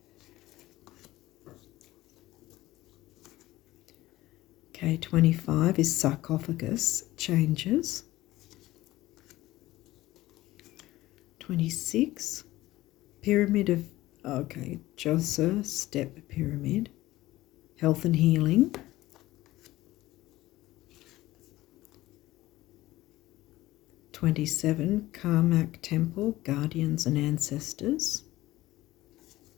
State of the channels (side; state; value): right; quieter; 17.0 dB